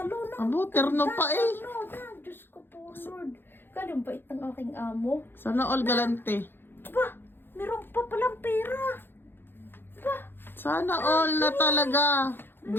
na. Abo, terno pa eh. Diyos ko po, Lord. Galing bait ng aking amo. Sana all galante. Ba, meron pa palang pera. Ba, Sana all na talaga.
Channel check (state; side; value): late; right; 0.10 ms